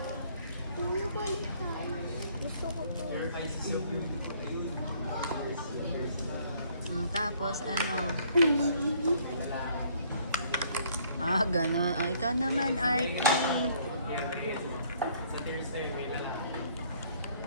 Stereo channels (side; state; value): both; inverted; correlation -0.62